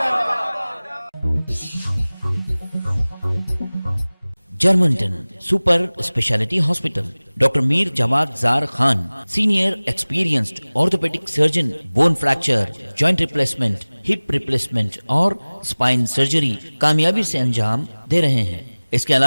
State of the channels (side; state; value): both; inverted; correlation -1.00